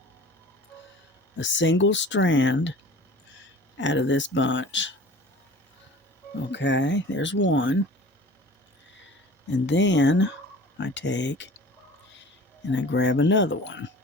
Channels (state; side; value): normal; both; correlation 0.43